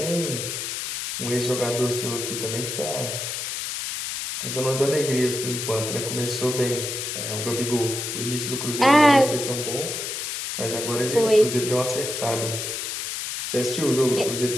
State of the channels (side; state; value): left; noise; hiss, 4 dB below the sound